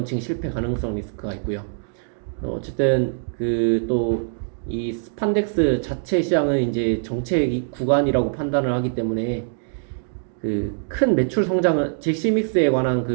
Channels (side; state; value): left; silent; digital silence